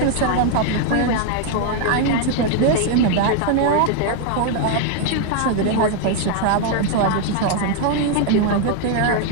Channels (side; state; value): both; different; correlation 0.00